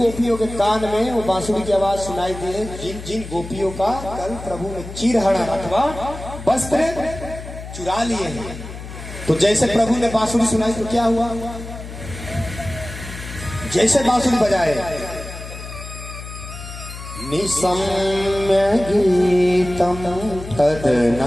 के कान में वो बांसुरी की आवाज सुनाई दी है, जिन जिन गोपियों का कल प्रभु ने चीर हरण अथवा वस्त्र चुरा लिए हैं। तो जैसे प्रभु ने बांसुरी सुनाई तो क्या हुआ, जैसे बांसुरी बजाए, निसम्य गीतम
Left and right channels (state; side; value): noise; left; hum, 12 dB below the sound